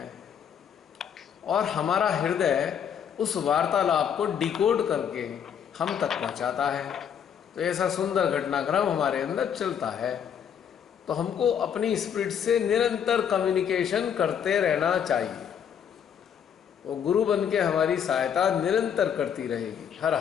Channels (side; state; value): right; quieter; 8.2 dB